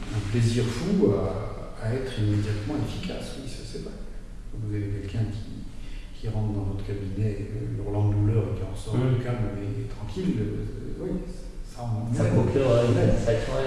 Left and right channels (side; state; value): both; identical; correlation 1.00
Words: plaisir fou à être immédiatement efficace, oui, ça c'est vrai. Vous avez quelqu'un qui rentre dans votre cabinet hurlant de douleur et qui en sort calme et tranquille, oui, ça procure une satisfaction,